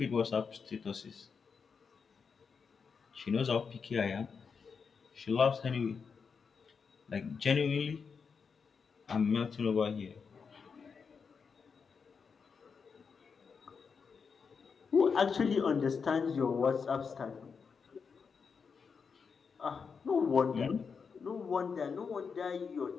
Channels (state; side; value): quieter; right; 5.7 dB